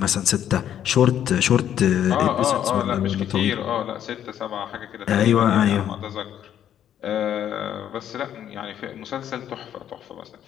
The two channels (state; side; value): quieter; right; 10.2 dB